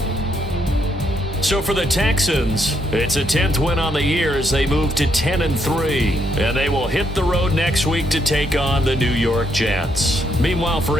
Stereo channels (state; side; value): normal; both; correlation 0.75